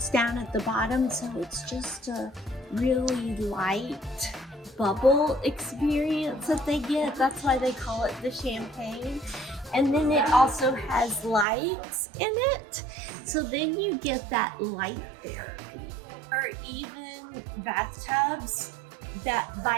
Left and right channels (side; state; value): left; drops out; at 11.5 s